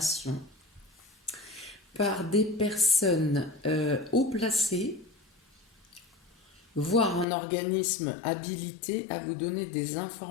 par des personnes haut placées, voire un organisme habilité à vous donner des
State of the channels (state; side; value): drops out; right; at 7.2 s